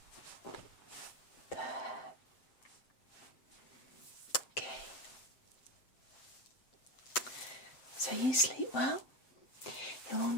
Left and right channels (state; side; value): late; right; 7.7 ms